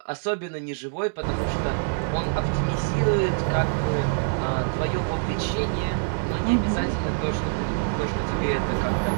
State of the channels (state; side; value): silent; left; digital silence